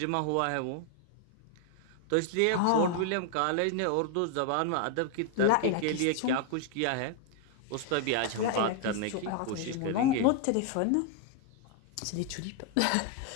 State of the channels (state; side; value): different; both; correlation 0.00